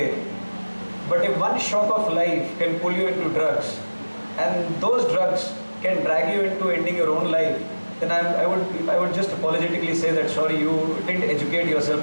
But if one shock of life can pull you into drugs, and those drugs can drag you into ending your own life, then I would just apologetically say that sorry, you didn't educate yourself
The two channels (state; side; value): inverted; both; correlation -1.00